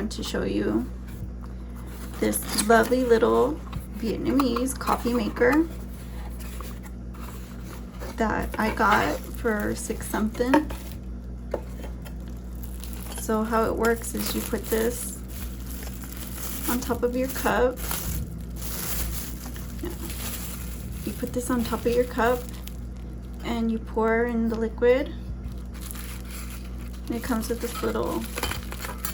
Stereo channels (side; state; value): both; identical; correlation 1.00